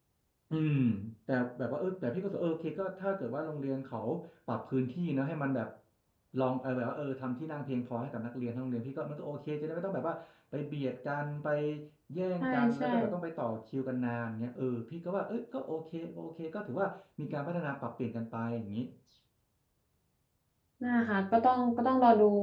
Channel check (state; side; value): identical; both; correlation 1.00